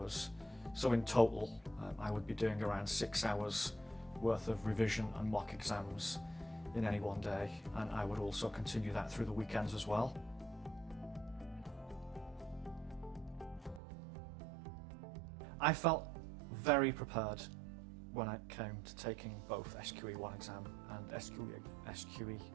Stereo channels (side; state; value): left; drops out; at 13.8 s